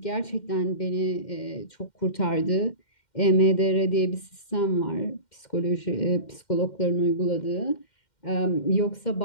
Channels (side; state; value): right; late; 2.1 ms